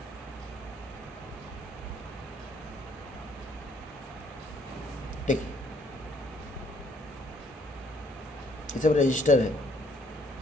ठीक, ये सब रजिस्टर है।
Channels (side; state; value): both; normal; correlation 0.65